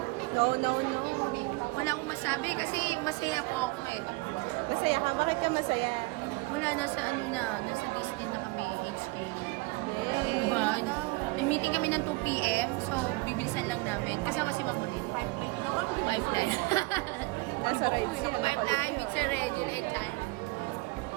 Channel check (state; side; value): quieter; left; 24.6 dB